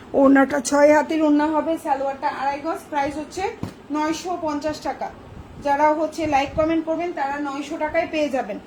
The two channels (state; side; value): identical; both; correlation 1.00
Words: ওড়নাটা 6 হাতের ওড়না হবে, সালোয়ারটা 2.5 গজ। প্রাইস হচ্ছে 950 টাকা। যারা হচ্ছে লাইক কমেন্ট করবেন তারা 900 টাকায় পেয়ে যাবেন।